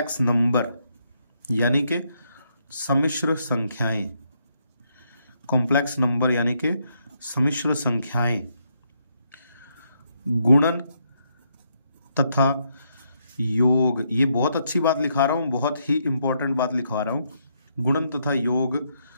नंबर यानी कि सम्मिश्र संख्याएं, कॉम्प्लेक्स नंबर यानी कि सम्मिश्र संख्याएं, गुणन तथा योग, ये बहुत अच्छी बात लिखा रहा हूं, बहुत ही इंपॉर्टेंट बात लिखवा रहा हूं, गुणन तथा योग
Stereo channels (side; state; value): both; inverted; correlation -0.76